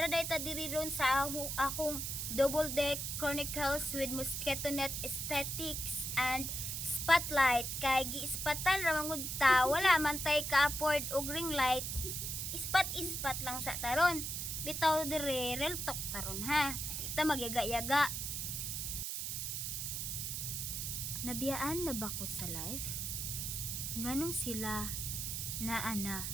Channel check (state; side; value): noise; right; hiss, 3 dB below the sound